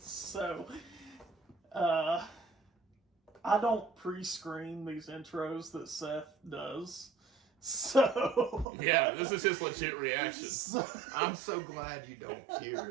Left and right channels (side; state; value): left; drops out; at 8.7 s